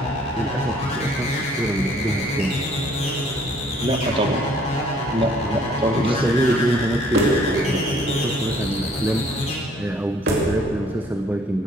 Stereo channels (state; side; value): normal; both; correlation 0.60